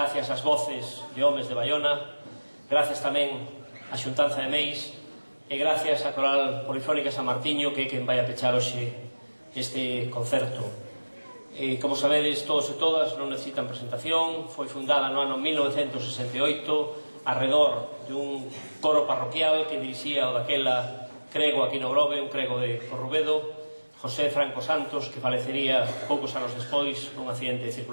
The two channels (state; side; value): inverted; both; correlation -1.00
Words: ás voces de homes de Baiona, gracias tamén á Xuntanza de Meis, e gracias á Coral Polifónica San Martiño, que é quen vai a pechar hoxe este concerto. Como sabedes, todos e todas, non necesitan presentación. Foi fundada no ano 1968 arredor dun coro parroquial que dirixía o daquela crego aquí no Grove, un crego de Corrubedo, José Franco Santos, que falecería poucos anos despois nun accidente de